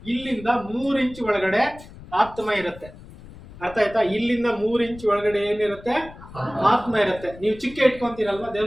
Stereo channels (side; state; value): left; noise; rumble, 18 dB below the sound